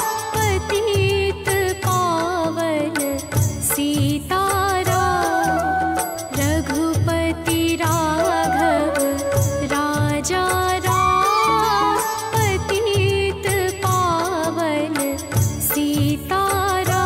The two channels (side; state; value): both; identical; correlation 1.00